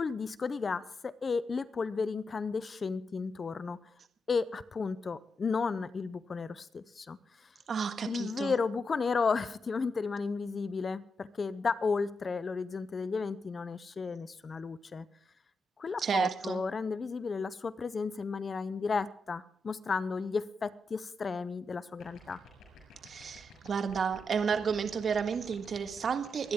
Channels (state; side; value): normal; both; correlation 0.85